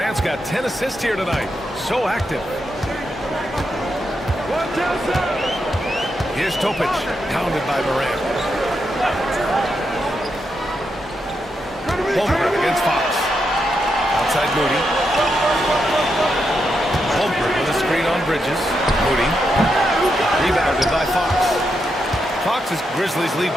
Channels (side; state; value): both; normal; correlation 0.83